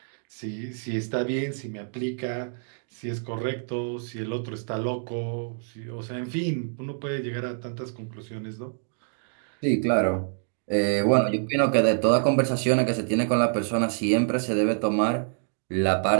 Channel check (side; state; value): left; silent; digital silence